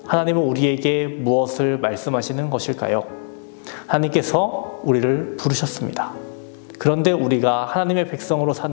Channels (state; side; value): silent; right; 63 dB below the other